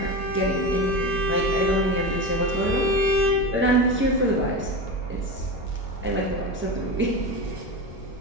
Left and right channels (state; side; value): noise; left; rumble, 18 dB below the sound